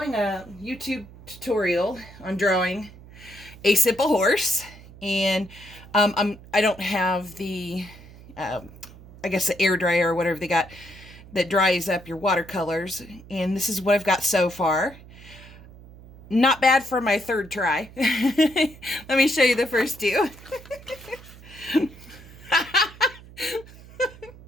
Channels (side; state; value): right; noise; hum, 20 dB below the sound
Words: a YouTube tutorial on drawing a simple horse, and I don't have the, I guess the air dryer or whatever they got that dries up your watercolors. And this is what I've got so far. Not bad for my third try. Let me show you the first two.